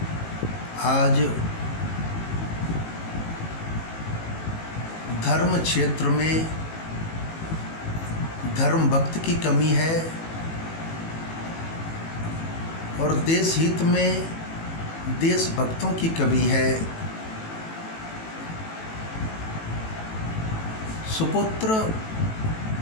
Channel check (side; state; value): right; late; 18 ms